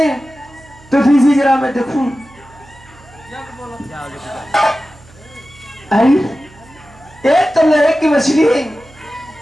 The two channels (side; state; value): right; noise; hum, 25 dB below the sound